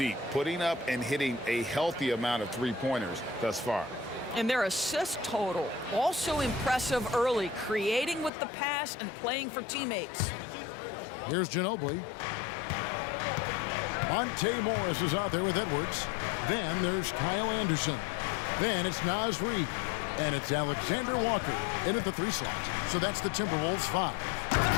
putting up and hitting a healthy amount of three-pointers thus far. And their assist total, also impressive early, creating with the pass and playing for teammates. Here's Ginobili. Monte Morris is out there with Edwards. Then there's Kyle Anderson. Then it's Naz Reid. And it's Alexander Walker in at the 3 slot. So that's the Timberwolves 5.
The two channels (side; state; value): right; drops out; at 8.3 s